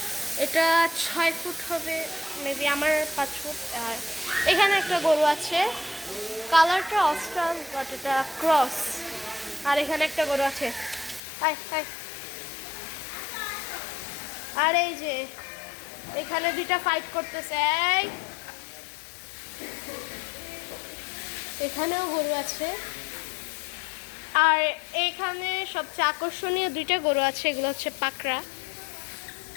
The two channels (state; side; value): drops out; right; at 11.2 s